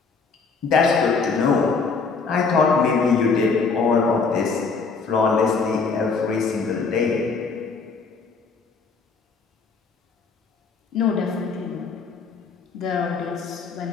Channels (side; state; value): right; quieter; 4.8 dB